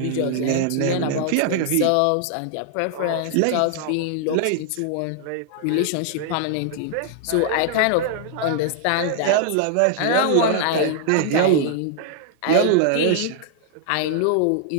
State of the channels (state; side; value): different; both; correlation 0.00